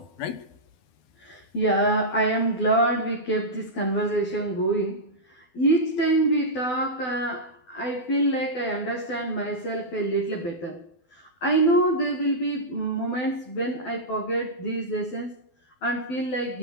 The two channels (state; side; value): late; right; 12 ms